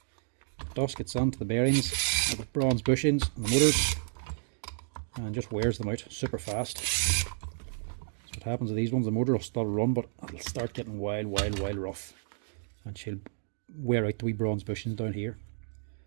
Dust gets onto the bearings, the bronze bushings and the motors, and just wears them out super fast. So what happens to these ones, the motor will still run, but it'll start getting wild rough, and she'll wear out the wee bronze bushings down here.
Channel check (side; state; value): left; silent; digital silence